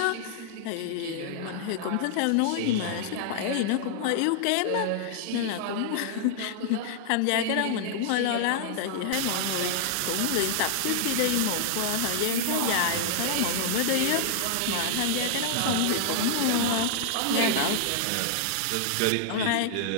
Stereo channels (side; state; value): both; different; correlation -0.01